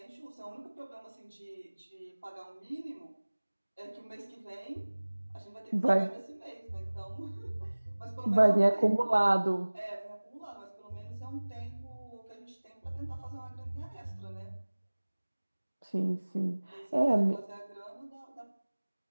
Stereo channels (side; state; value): both; inverted; correlation -1.00